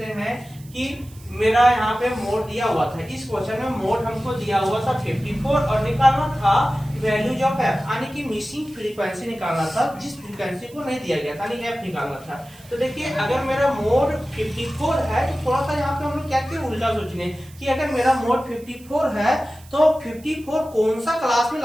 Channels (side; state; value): right; noise; hiss, 24 dB below the sound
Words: हैं कि मेरा यहाँ पे मोड दिया हुआ था, इस क्वेश्चन में मोड हमको दिया हुआ था 54 और निकालना था वैल्यूज ऑफ एफ, यानी कि मिसिंग फ्रीक्वेंसी निकालना था जिस फ्रीक्वेंसी को नहीं दिया गया था, यानी एफ निकालना था। तो देखिए अगर मेरा मोड 54 है तो थोड़ा सा यहाँ पे हम लोग क्या किए उल्टा सोचने कि अगर मेरा मोड 54 है तो 54 कौन सा क्लास में